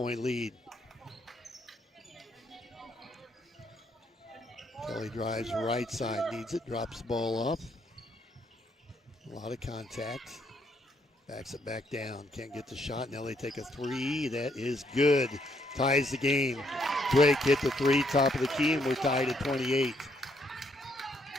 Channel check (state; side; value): normal; both; correlation 0.72